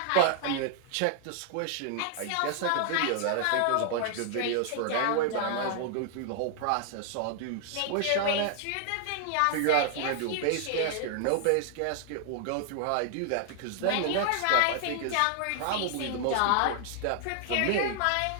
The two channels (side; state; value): both; different; correlation 0.00